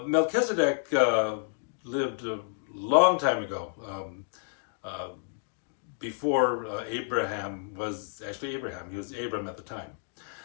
Melchizedek lived a long time ago, uh, before Abraham was actually Abraham. He was Abram at the time.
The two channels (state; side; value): silent; right; digital silence